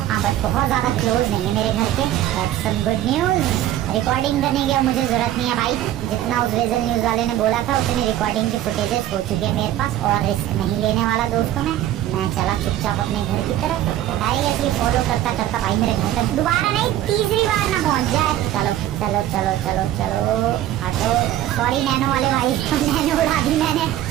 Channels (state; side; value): quieter; left; 12.9 dB